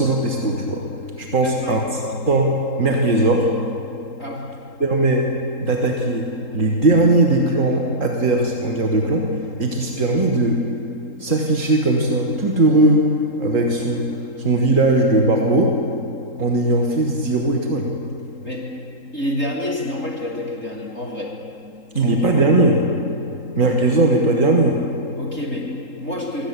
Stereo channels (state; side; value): late; right; 3.8 ms